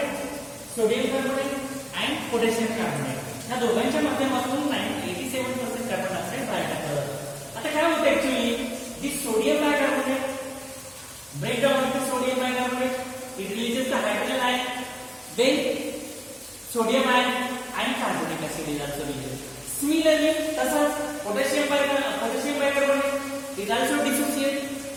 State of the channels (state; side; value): identical; both; correlation 1.00